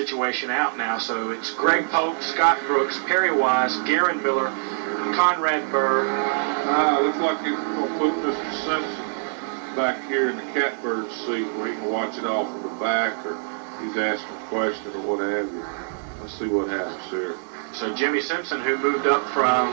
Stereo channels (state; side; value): silent; left; digital silence